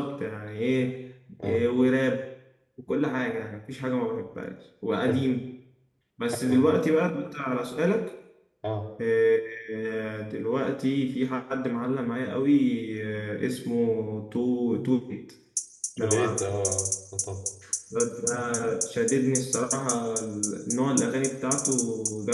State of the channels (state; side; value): identical; both; correlation 1.00